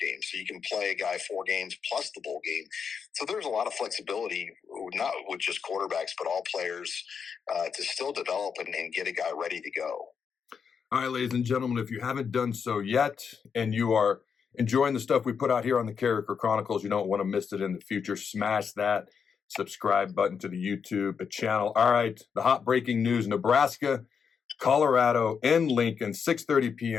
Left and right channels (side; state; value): right; quieter; 6.5 dB